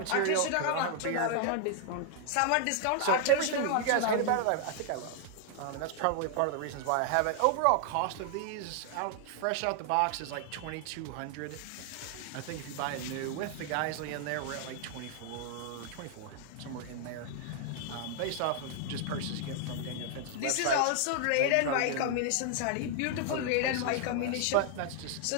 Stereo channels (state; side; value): different; both; correlation 0.00